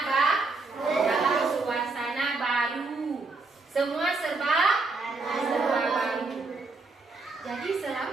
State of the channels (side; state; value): left; quieter; 3.7 dB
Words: baru. Semua serba baru. Jadi